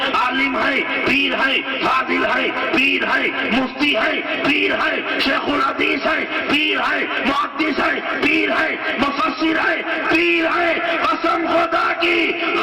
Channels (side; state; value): both; identical; correlation 1.00